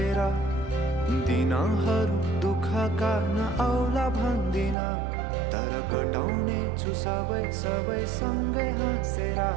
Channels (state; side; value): drops out; left; at 4.8 s